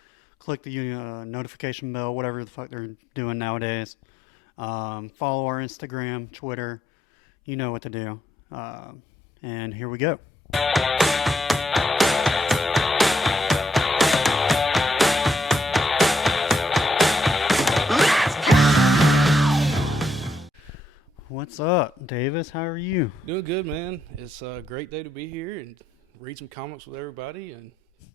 click the notification bell, whatever the fuck they're doing nowadays. Follow our Instagram, Twitter, you know what to do. And here we go. What's up, Davis? How are you? Doing good, man. It's a great day to be here and read some comics with everybody and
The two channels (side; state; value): both; normal; correlation 0.77